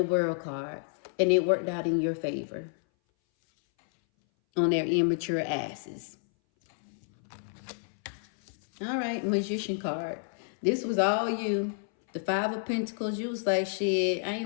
World card. And it worked out in your favor on their immature asses. All right, Magician card. This was all you. The 5 of Pentacles, you was like, shit, I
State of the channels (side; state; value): right; silent; 58 dB below the other